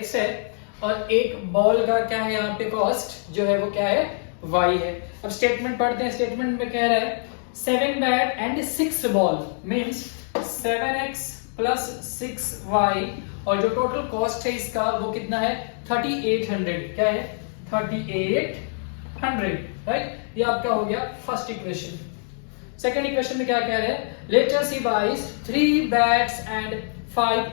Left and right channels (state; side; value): silent; right; digital silence